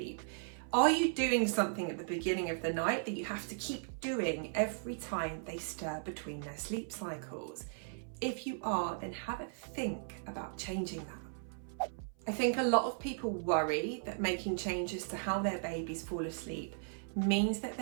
Are you doing something at the beginning of the night that you have to keep doing every time they stir between their sleep cycles? If you are, then have a think about changing that. I think a lot of people worry that making changes to how their babies fall asleep means that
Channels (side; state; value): left; silent; 53 dB below the other